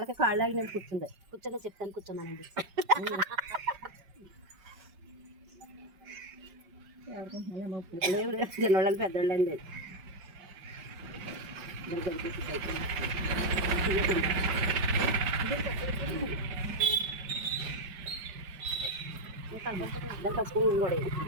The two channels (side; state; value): left; late; 5.3 ms